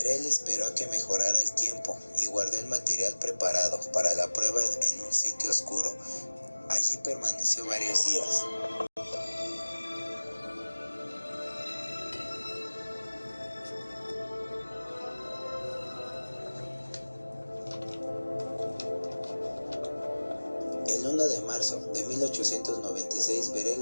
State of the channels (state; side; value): inverted; both; correlation -1.00